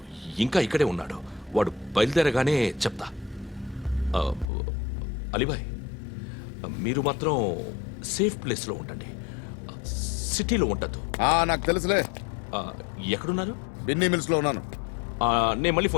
ఇంకా ఇక్కడే ఉన్నాడు. వాడు బయలుదేరగానే చెప్తా. ఆ, అలీబాయ్, మీరు మాత్రం సేఫ్ ప్లేస్లో ఉండండి, సిటీలో ఉండద్దు. నాకు తెలుసులే. ఎక్కడున్నారు? బిన్నీ మిల్స్ లో ఉన్నాను. నేను మళ్ళీ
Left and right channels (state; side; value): drops out; right; at 4.5 s